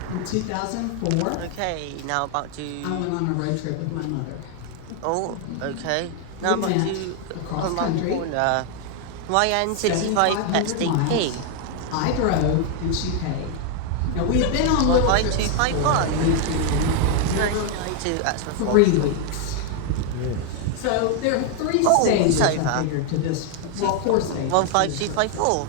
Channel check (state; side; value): different; both; correlation 0.01